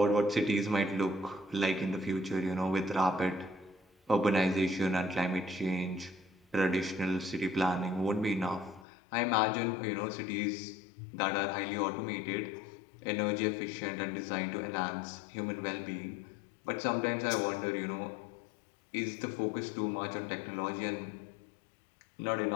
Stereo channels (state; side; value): drops out; right; at 8.8 s